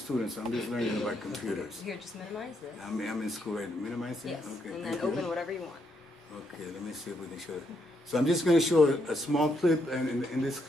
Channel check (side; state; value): both; normal; correlation 0.77